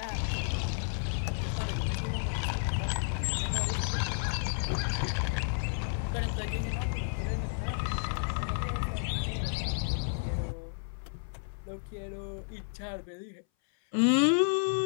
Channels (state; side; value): silent; right; 57 dB below the other